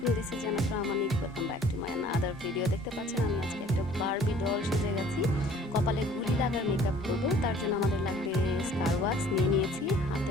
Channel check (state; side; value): normal; both; correlation 0.53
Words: this is Jannat from Amanik. Welcome back to my another video. দেখতে পাচ্ছেন আমি আজকে একটা বারবি ডল সেজে গেছি, কপালে গুলি লাগার মেকআপ করব। তার জন্য আমাদের লাগবে স্কার ওয়াক্স নিয়েছি,